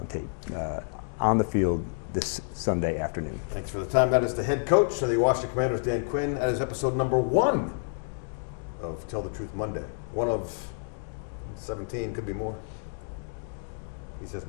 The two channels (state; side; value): silent; right; 59 dB below the other